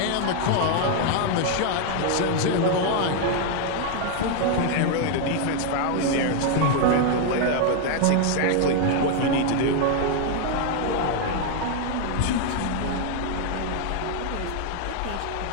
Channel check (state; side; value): different; both; correlation 0.00